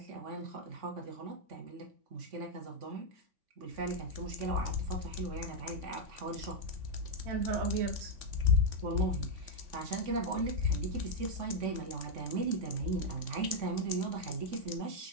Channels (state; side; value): late; left; 3.5 ms